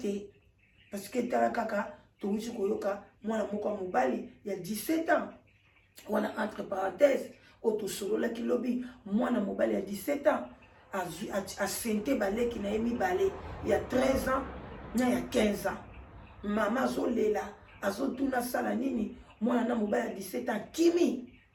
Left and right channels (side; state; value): both; identical; correlation 1.00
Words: parce que tala kaka touti koyoka mwana moko mobali ya 17 ans wana entre parenthèses otosololaki lobi mwana mobali ya 17 ans asente baleki na ye mibale ya 13 ans na ya 15 ans mama azolela azotuna sala nini mwana na mobali ya 17 ans